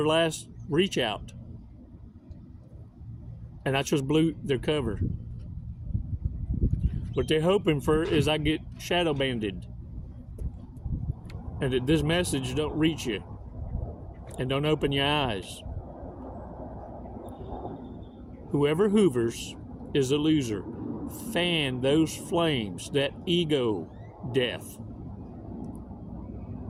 last reach out. And I just blew their cover. What they're hoping for is I get shadow banded and that this message don't reach you and don't open your eyes. Whoever hoovers is a loser. Fan those flames, that ego death.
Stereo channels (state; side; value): identical; both; correlation 1.00